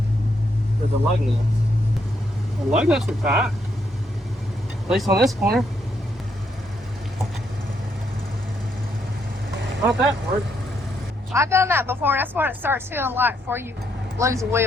for the lug nuts? The lug nuts are tight. At least on this corner. Not that hard. I've done that before, and that's what it starts feeling like before you lose a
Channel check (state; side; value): normal; both; correlation 0.76